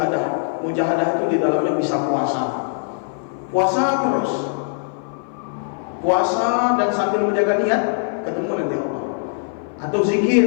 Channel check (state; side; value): silent; right; 57 dB below the other